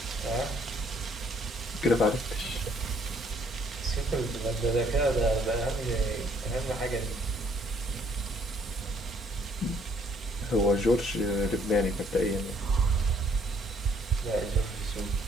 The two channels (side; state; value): both; normal; correlation 0.64